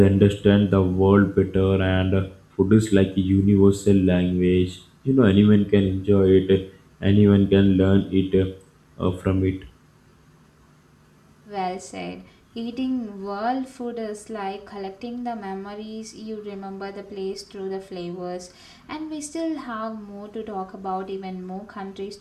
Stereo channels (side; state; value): both; identical; correlation 1.00